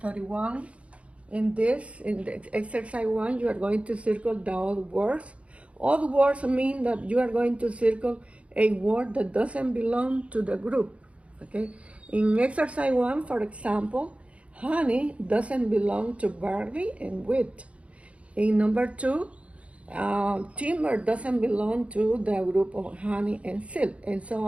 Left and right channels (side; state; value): left; late; 0.063 ms